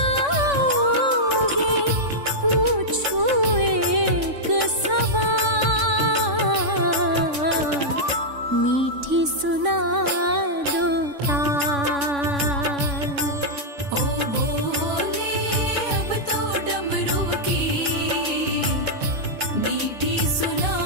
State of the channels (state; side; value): late; left; 3.5 ms